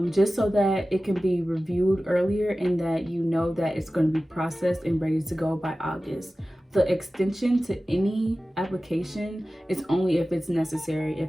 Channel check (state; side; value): normal; both; correlation 0.96